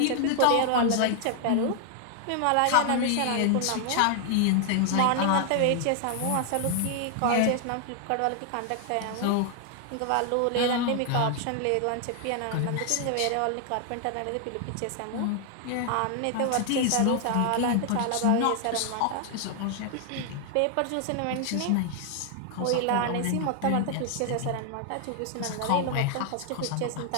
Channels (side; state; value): both; different; correlation 0.00